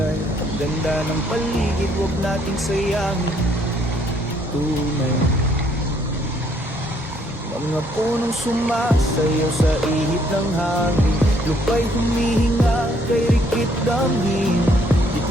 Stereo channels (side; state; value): both; normal; correlation 0.67